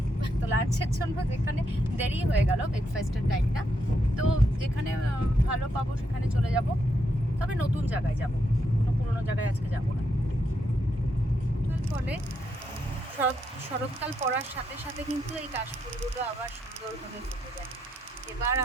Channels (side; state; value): both; normal; correlation 0.79